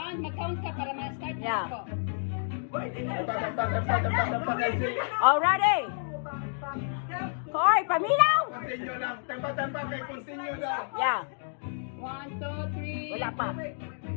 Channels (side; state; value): right; silent; digital silence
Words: mag-count ka para ma-start na Yeah. ako. Oh, ready? Hoy, paminaw! Continue lang. Tempa-tempa kay continue daw. Yeah. 1, 2, 3. Wala pa.